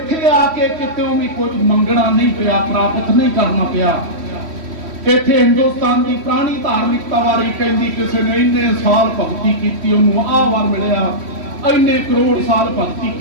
आके कितों भी कुछ मंगना नहीं पिया, प्राप्त नहीं करना पिया। इत्थे हिंदुस्तान की पुरानी धार्मिकता बारे कहती किसी ने इन्ने साल भगती की उन्होंने आह वार मिलिया, इन्ने करोड़ साल भगती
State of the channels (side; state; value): left; late; 3.1 ms